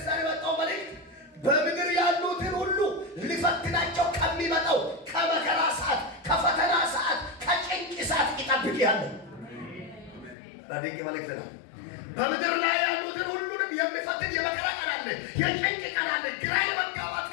የመጣው መልእክት በምድር ያሉትን ሁሉ ሊፈትናቸው ከሚመጣው ከመከራ ሰዓት፣ ከፈተና ሰዓት፣ ከጭንቅ ሰዓት ይጠብቅሃለሁ። ድንቅ መልእክት ነው። በምድር ላይ ያሉትን ሁሉንም የሚፈትን የመከራ ቀን አለ፣ የጭንቅ ቀን አለ፣ ግራ የመጋባት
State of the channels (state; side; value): drops out; right; at 10.4 s